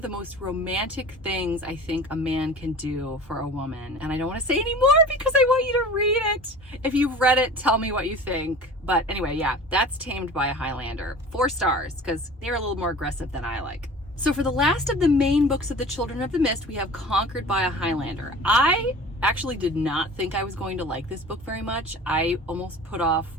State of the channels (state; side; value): normal; both; correlation 0.40